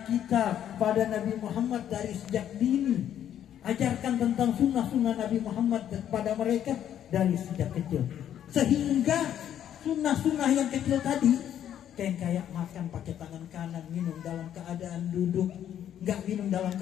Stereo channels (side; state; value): right; quieter; 10.3 dB